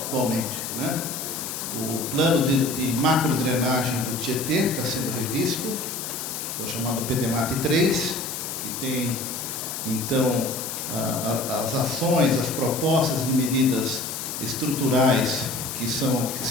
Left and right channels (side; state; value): left; noise; hiss, 6 dB below the sound